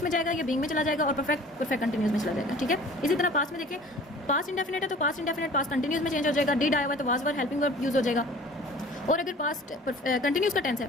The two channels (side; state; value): both; normal; correlation 0.47